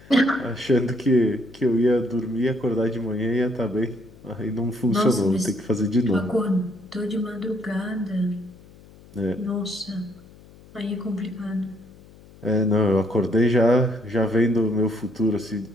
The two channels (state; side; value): noise; left; hum, 23 dB below the sound